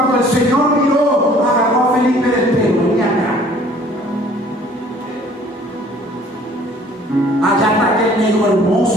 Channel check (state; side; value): normal; both; correlation 0.54